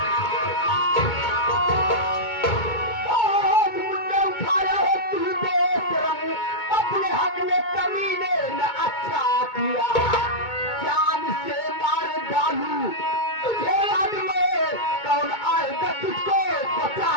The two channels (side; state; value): right; late; 2.2 ms